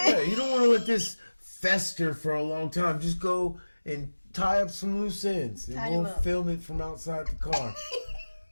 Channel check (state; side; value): inverted; both; correlation -1.00